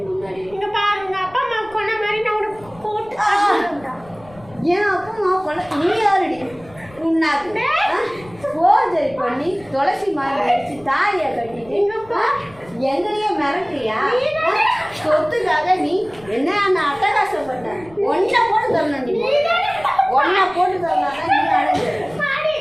முன்னாடி. இங்கே பாருங்க, அப்பா அம்மா கொண்ட மாதிரி நான் உனக்கு போட்டு ஏன் அப்பா அம்மா கொள்ள நீ யாருடி உன்னாக்கு போஜரி பண்ணி துளசி மாதிரி வச்சு தாலியை கட்டிட்டு எங்களையே மிரட்டுறியா? சொத்துக்காக நீ என்ன அட்டகாசப்பட்ட ஒன்றை போட்டு தரணும். நீ ஒன்றை போட்டு தரலாம் நீ அழகு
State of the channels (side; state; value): left; noise; rumble, 23 dB below the sound